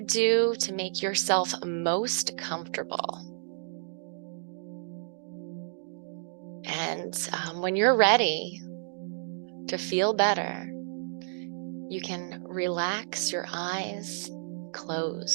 do to make yourself most comfortable. And when you're ready to feel better, you can relax your eyes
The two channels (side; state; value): left; silent; digital silence